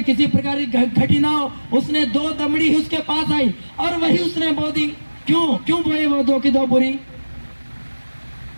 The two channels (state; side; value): inverted; both; correlation -1.00